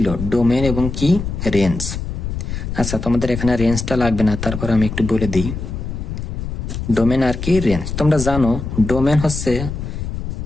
ডোমেন এবং কি রেঞ্জ। আচ্ছা, তোমাদের এখানে রেঞ্জটা লাগবে না, তারপর আমি একটু বলে দিই ডোমেন আর কি রেঞ্জ। তোমরা জানো ডোমেন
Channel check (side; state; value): left; noise; rumble, 5 dB below the sound